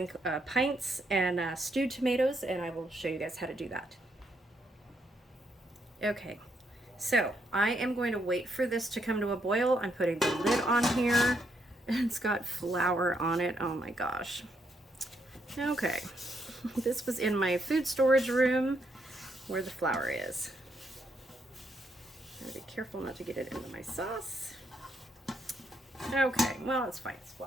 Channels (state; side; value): normal; both; correlation 0.76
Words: pints and stewed tomatoes, and I will show you guys how to do that. Okay, so I am going to wait for this to come to a boil. I'm putting the lid on here. It's got flour on it. Oh my gosh. Okay. This was in my food storage room where the flour is. I'm gonna be careful not to get it into my sauce. Okay, well, it's fine, it's